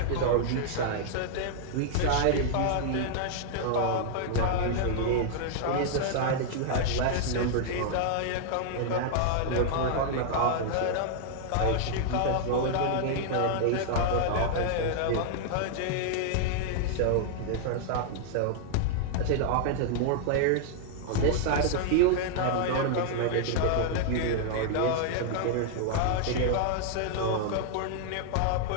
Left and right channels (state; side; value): different; both; correlation -0.01